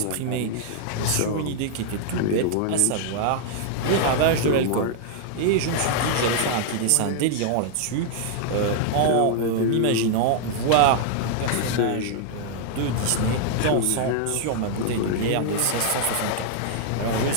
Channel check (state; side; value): different; both; correlation -0.01